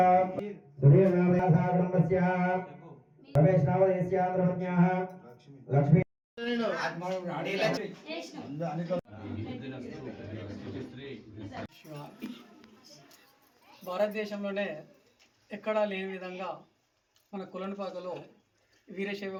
సురేణామయాసా కుటుంబస్య రమేష్నామదేస్య ధర్మజ్ఞాః లక్ష్మీ భారతదేశంలోనే ఎక్కడా లేని విధంగా మన కులనపాకలో వీరశైవ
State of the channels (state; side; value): identical; both; correlation 1.00